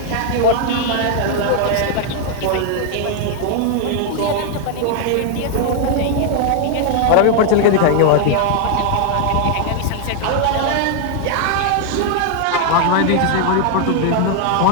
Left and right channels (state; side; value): different; both; correlation 0.00